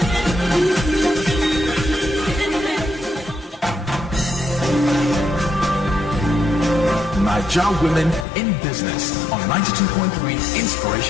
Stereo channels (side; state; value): right; drops out; at 8.2 s